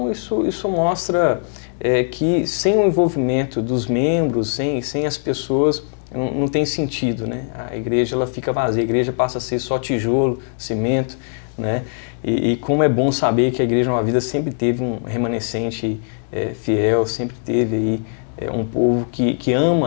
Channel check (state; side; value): silent; right; digital silence